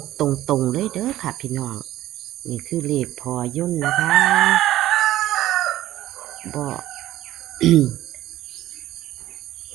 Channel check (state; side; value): quieter; left; 14.4 dB